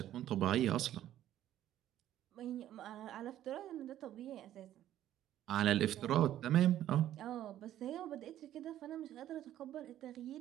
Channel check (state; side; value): quieter; left; 12.3 dB